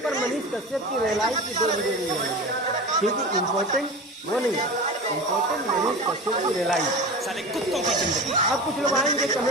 पर मनीष कश्यप की रिलाई की 2 वीडियो नहीं मिलेगी। क्योंकि इम्पोर्टेंट वो नहीं है, इम्पोर्टेंट मनीष कश्यप की रिलाई। अब कुछ लोग आएंगे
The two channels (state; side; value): normal; both; correlation 0.30